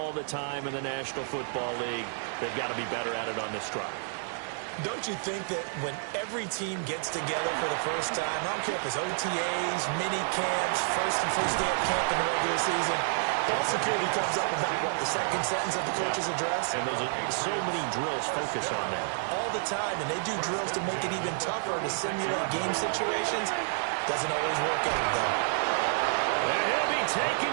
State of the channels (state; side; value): silent; left; 58 dB below the other